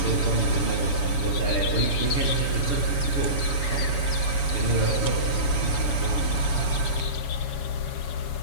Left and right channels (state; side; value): late; right; 7.0 ms